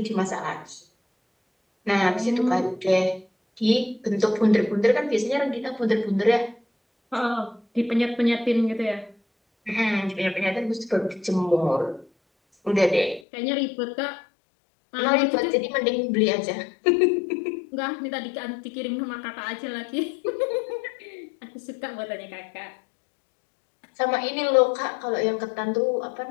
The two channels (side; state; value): right; drops out; at 13.2 s